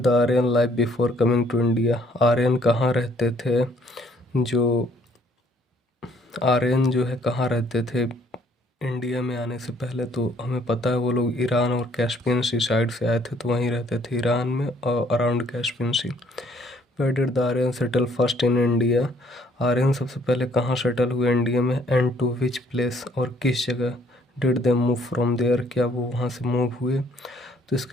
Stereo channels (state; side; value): normal; both; correlation 0.64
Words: Aryan live before coming to India, Aryan कहाँ रहते थे, जो आर्यन जो है कहाँ रहते थे इंडिया में आने से पहले। तो हमें पता है वो लोग ईरान और कैस्पियन सी साइड से आए थे, तो वहीं रहते थे ईरान में और around Caspian Sea. Where did the Aryan settle first in India, Aryan सबसे पहले कहाँ सेटल हुए इंडिया में, एंड टू विच प्लेस, और किस जगह, did they move from there, क्या वो वहाँ से मूव हुए। तो